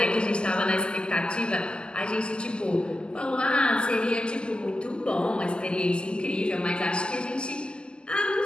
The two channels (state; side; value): late; right; 0.049 ms